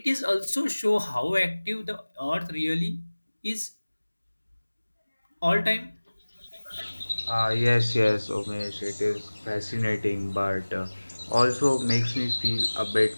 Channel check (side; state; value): both; inverted; correlation -1.00